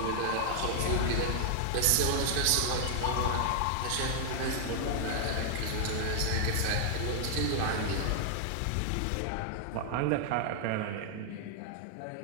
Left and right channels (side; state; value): both; different; correlation -0.01